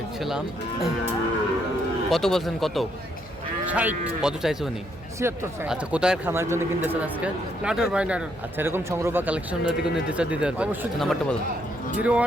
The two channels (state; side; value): noise; left; hum, 22 dB below the sound